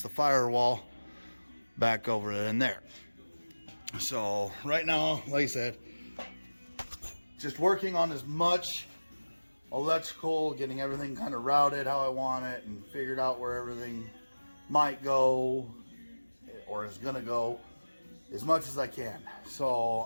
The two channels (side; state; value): both; inverted; correlation -1.00